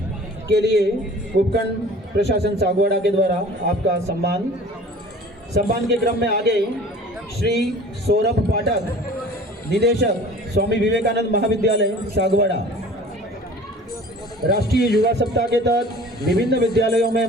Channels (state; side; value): normal; both; correlation 0.45